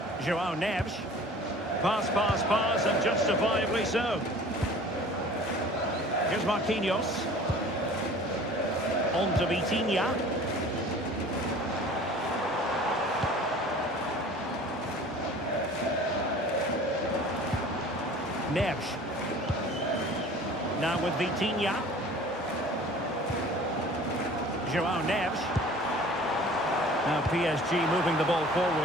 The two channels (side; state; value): both; normal; correlation 0.46